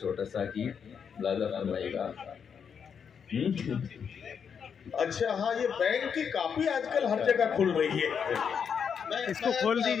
सा गीत लादा फरमाएगा। अच्छा हाँ, ये बैंक की कापी आजकल हर जगह खुल रही है। इसको खोल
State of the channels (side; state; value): right; quieter; 7.0 dB